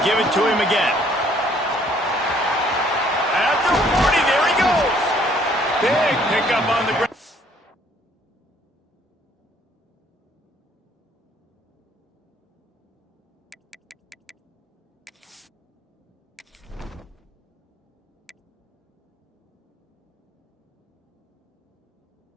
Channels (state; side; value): normal; both; correlation 0.62